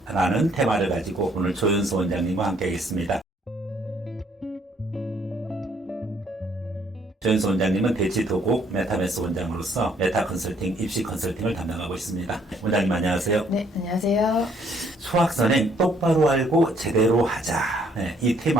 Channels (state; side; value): normal; both; correlation 0.66